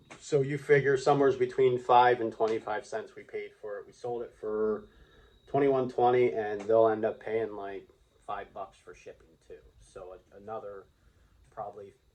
So you figure somewhere's between 5 and 25 cents we paid for it. We sold it for $21.20, and they'll end up paying like $5 for shipping too. So another probably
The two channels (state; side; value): identical; both; correlation 1.00